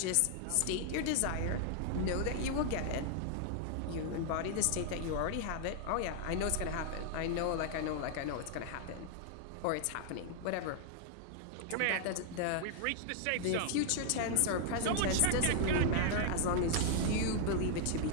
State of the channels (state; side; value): different; both; correlation 0.00